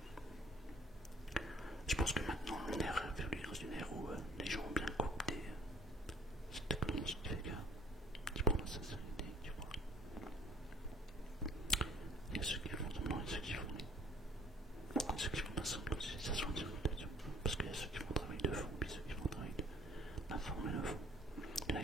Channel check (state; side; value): normal; both; correlation 0.57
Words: Je pense que maintenant on est revenu dans une ère où les gens ont bien coopté cette technologie qui fait qui prend la sincérité, tu vois. Il y a ceux qui font semblant et ceux qui font pas semblant, ça se voit en direct, parce qu'il y a ceux qui font un travail de fond, puis ceux qui font un travail d'informer le fond. Il y en a